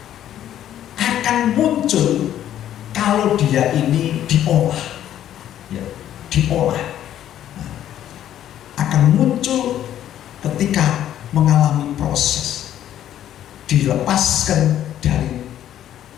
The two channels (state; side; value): quieter; right; 11.4 dB